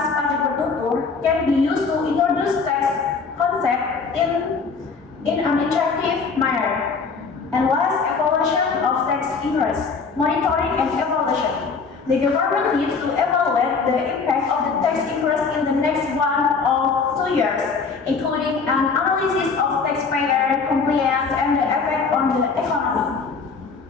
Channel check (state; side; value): quieter; right; 5.0 dB